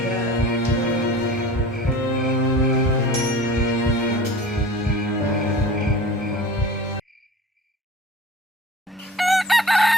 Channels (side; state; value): both; normal; correlation 0.40